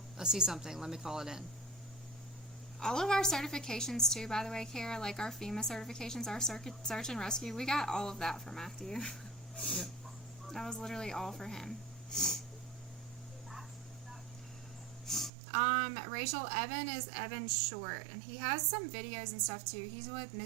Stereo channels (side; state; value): left; drops out; at 15.3 s